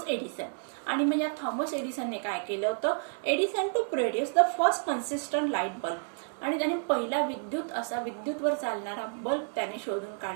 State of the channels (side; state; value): left; silent; 58 dB below the other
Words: एडिसन. आणि मग या थॉमस एडिसनने काय केलं होतं, Edison to produce the first consistent light bulb. आणि त्याने पहिला विद्युतवर चालणारा बल्ब त्याने शोधून